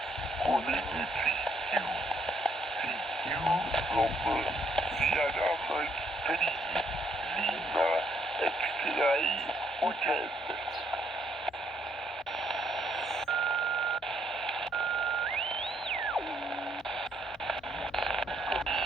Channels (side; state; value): both; normal; correlation 0.70